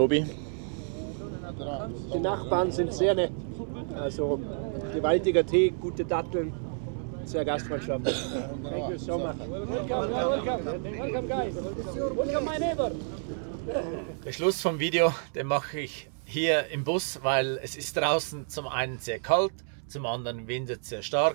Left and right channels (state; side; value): silent; left; digital silence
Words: Die Nachbarn sind sehr nett. Also gewaltiger Tee, gute Datteln, sehr gastfreundschaftlich. Thank you so much. Welcome guys. Welcome my neighbor. Der Schluss vom Video, den mache ich hier im Bus, weil es ist draußen zum einen sehr kalt, zum anderen windet sehr